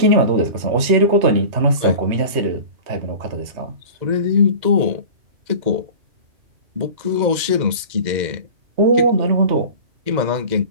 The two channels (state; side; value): late; left; 2.0 ms